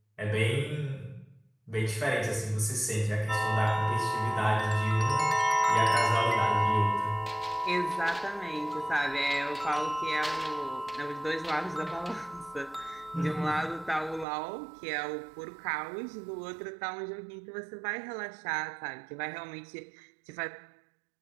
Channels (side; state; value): left; drops out; at 14.2 s